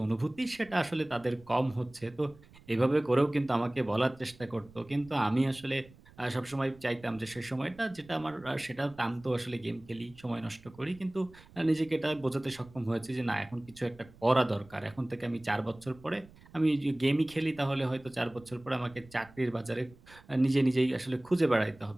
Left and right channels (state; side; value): noise; right; rumble, 24 dB below the sound